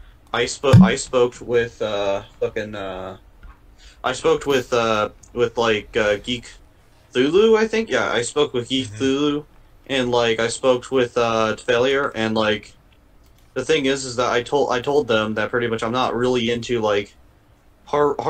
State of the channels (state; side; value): identical; both; correlation 1.00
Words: I spoke with Geek Thulu, I think. Yeah, I spoke with Geek Thulu, and I spoke with Failure, and the thing is that I told them that pretty much I'm not really into